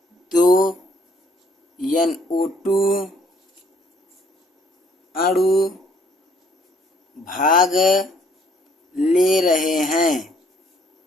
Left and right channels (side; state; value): both; normal; correlation 0.64